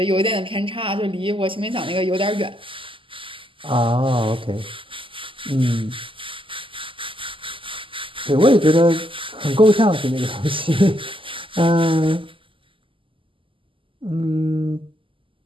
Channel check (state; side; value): late; left; 0.25 ms